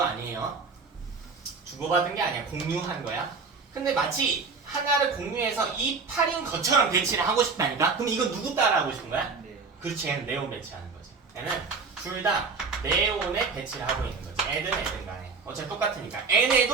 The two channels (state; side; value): quieter; left; 4.7 dB